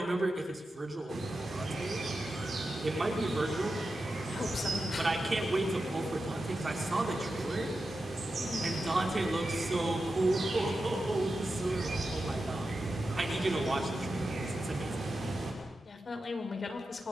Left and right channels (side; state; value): both; normal; correlation 0.91